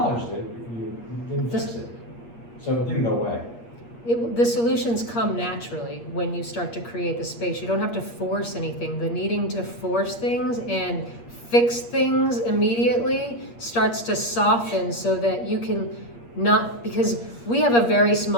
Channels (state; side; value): late; right; 8.5 ms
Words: it, you didn't fix it, so it didn't go away. The solutions come naturally when you start to create the space. You don't have to force anything. The needing to force things and fix things immediately starts to soften so that you can not, because we have a very